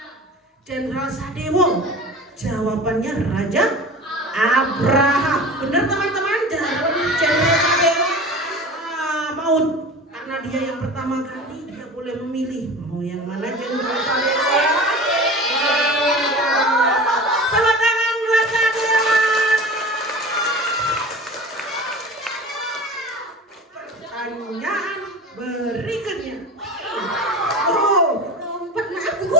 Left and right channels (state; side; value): normal; both; correlation 0.35